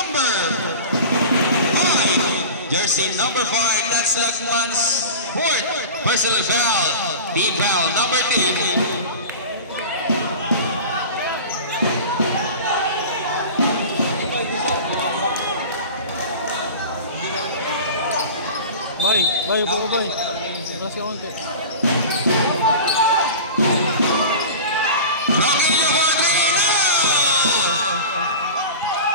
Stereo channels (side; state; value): both; inverted; correlation -0.34